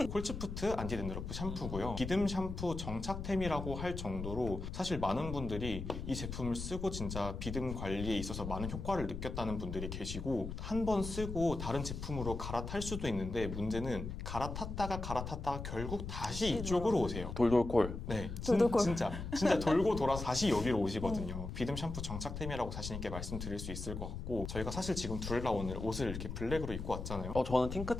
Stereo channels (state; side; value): noise; left; rumble, 6 dB below the sound